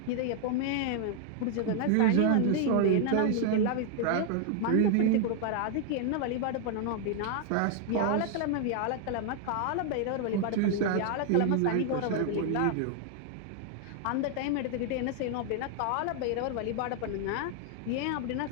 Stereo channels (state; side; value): different; both; correlation 0.00